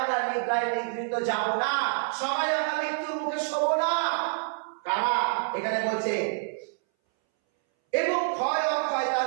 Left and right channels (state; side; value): silent; left; 60 dB below the other